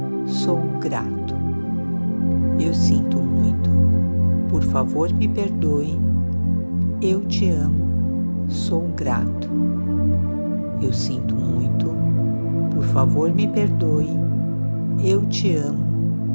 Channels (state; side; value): inverted; both; correlation -1.00